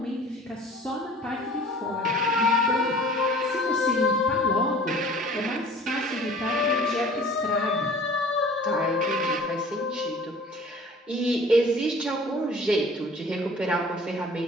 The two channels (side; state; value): both; normal; correlation 0.48